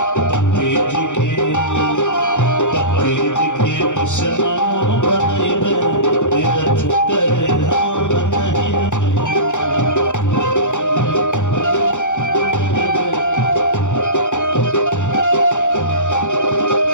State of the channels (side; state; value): right; late; 0.85 ms